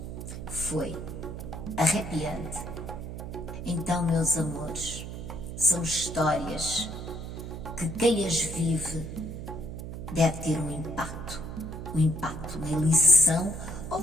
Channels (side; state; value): right; noise; hum, 8 dB below the sound